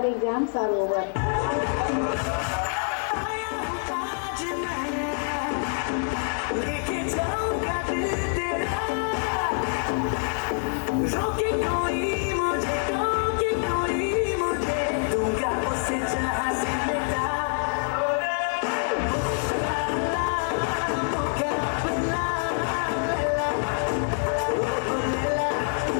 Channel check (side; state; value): right; silent; 61 dB below the other